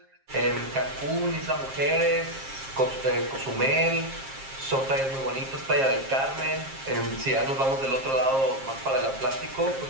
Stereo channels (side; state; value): left; late; 7.5 ms